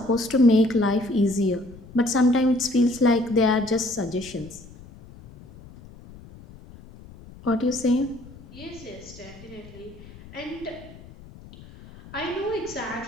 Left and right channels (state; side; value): noise; left; rumble, 19 dB below the sound